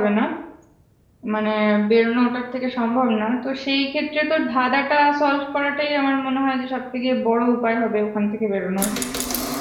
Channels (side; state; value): both; identical; correlation 1.00